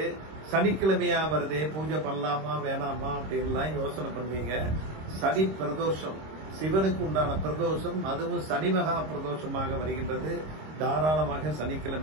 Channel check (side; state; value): left; late; 26 ms